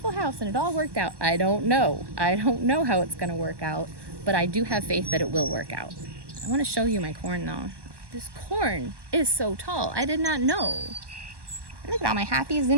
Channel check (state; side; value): late; left; 1.1 ms